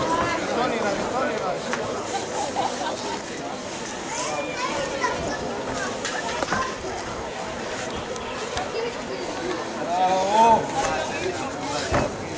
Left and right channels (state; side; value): identical; both; correlation 1.00